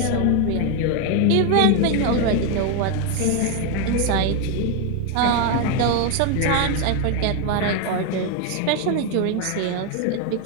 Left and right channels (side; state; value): both; different; correlation 0.01